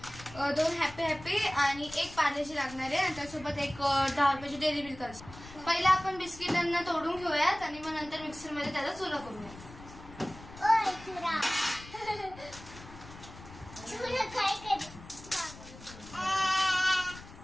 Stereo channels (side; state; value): left; noise; rumble, 17 dB below the sound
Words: 2 हॅपी आणि 1 पार्लेजी लागणार आहे, आणि त्यासोबत एक 10 रुपयाची डेअरी मिल्क असते। पहिला आपण बिस्किटांना तोडून घेऊयात आणि मग नंतर मिक्सरमध्ये त्याचा चुरा करूया।